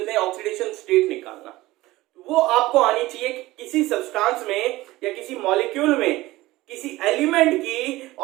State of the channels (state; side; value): quieter; left; 18.3 dB